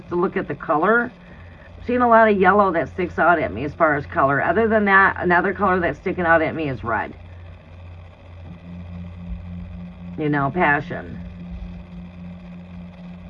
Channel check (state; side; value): identical; both; correlation 1.00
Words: to look at the color, I'm seeing a lot of yellow that sticks out at me as far as color. Other than that, another color that's sticking out at me is red. You know, passion.